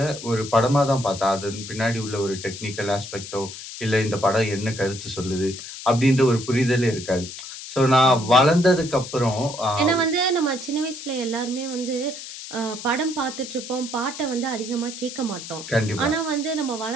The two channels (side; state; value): left; noise; hiss, 11 dB below the sound